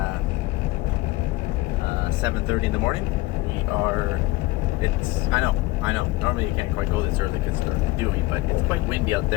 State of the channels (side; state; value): right; quieter; 19.2 dB